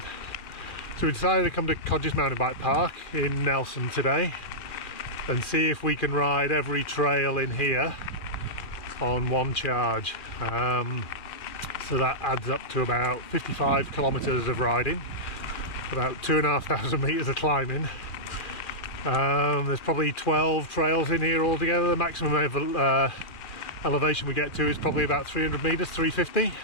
we decided to come to Codgers Mountain Bike Park in Nelson today and see if we can ride every trail in here on one charge. So that adds up to about 55 kilometers of riding, about 2,500 meters of climbing. There's probably 12 trails in here altogether. The maximum elevation we get to is probably about 300 meters, 350.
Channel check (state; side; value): late; right; 2.4 ms